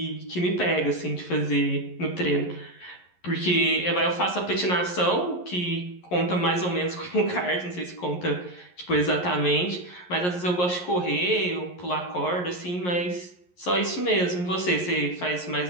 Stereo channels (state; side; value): late; right; 11 ms